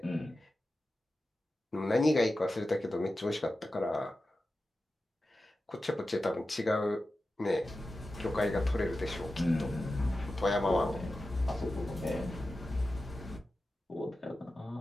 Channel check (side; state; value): both; normal; correlation 0.93